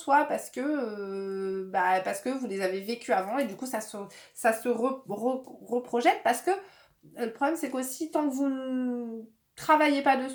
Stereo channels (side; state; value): both; identical; correlation 1.00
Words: parce que vous les avez vécues avant. Et du coup, ça se reprojette parce que le problème, c'est qu'aussi, tant que vous ne travaillez pas